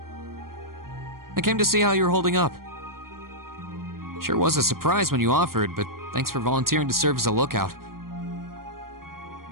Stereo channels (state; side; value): late; left; 0.92 ms